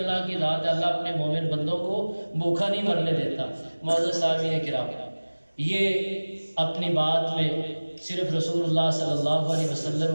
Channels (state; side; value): inverted; both; correlation -1.00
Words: کی ذات ہے، اللہ اپنے مومن بندوں کو بھوکا نہیں مرنے دیتا۔ معزز سامعین کرام، یہ اپنی بات میں صرف رسول اللہ صلی اللہ علیہ